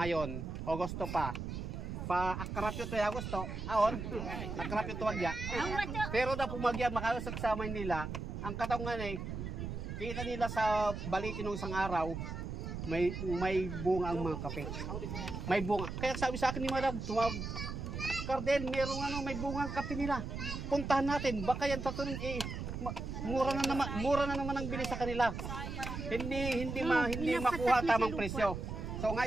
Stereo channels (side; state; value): right; noise; rumble, 5 dB below the sound